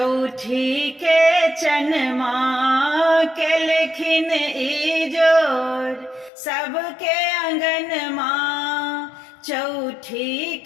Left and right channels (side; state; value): right; drops out; at 6.3 s